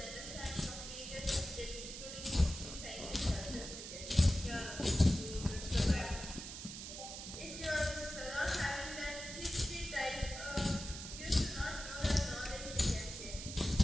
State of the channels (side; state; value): right; noise; hiss, 9 dB below the sound